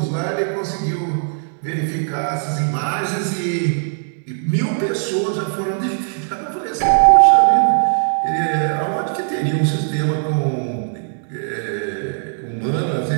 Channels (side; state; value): left; silent; digital silence